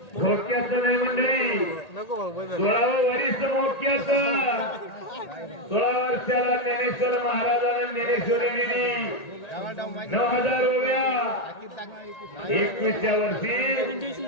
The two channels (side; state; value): right; late; 1.8 ms